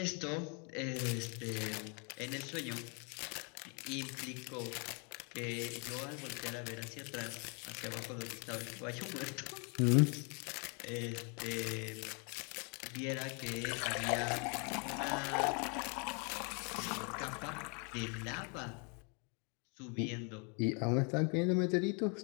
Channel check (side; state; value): right; quieter; 35.5 dB